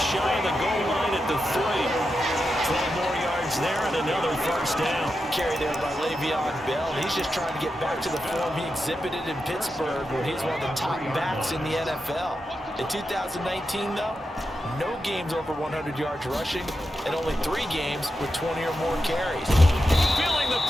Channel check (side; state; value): both; normal; correlation 0.88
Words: shy of the goal line at the 3. 12 more yards there and another first down. Carry there by Le'Veon Bell. He's just trying to get back to the form he exhibited in Pittsburgh when he's one of the top backs in the NFL. In 2019, though, no games over 100 yards rushing and only 3 games with 20 or more carries. Feeling the